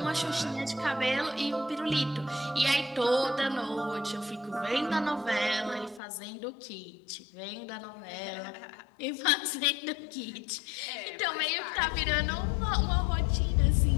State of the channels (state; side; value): drops out; right; at 6.0 s